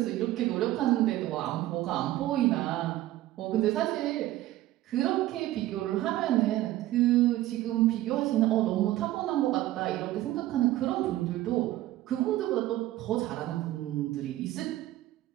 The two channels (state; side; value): quieter; left; 15.3 dB